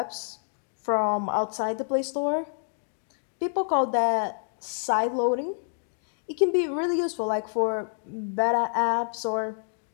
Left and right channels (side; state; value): right; silent; digital silence